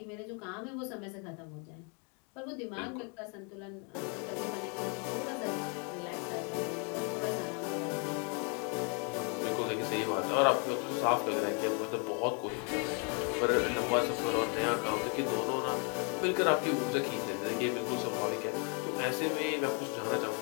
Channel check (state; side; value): quieter; right; 36.8 dB